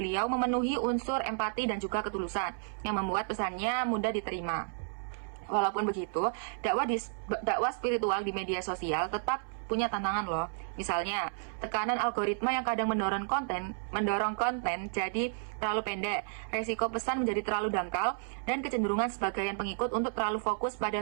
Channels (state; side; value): silent; left; 56 dB below the other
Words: memenuhi unsur empati dan juga ketulusan yang membuat pesannya mudah diterima. Walaupun begitu, dakwah spiritual di media sosial tetap punya tantangan loh. Misalnya, tekanan algoritma yang kadang mendorong konten jadi terlalu pendek, resiko pesan menjadi terlalu dangkal, dan kecenderungan sebagian pengikut untuk terlalu fokus pada